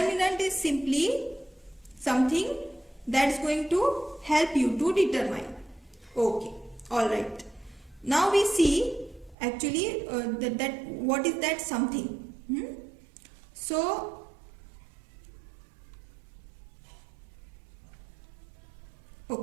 is simply something that's going to help you to determine. Okay, all right. Now we see actually that what is that something. So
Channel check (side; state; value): left; drops out; at 9.3 s